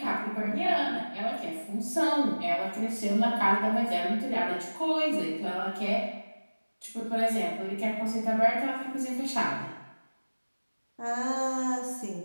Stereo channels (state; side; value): inverted; both; correlation -1.00